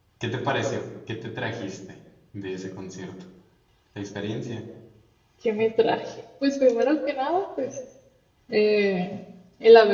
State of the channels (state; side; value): identical; both; correlation 1.00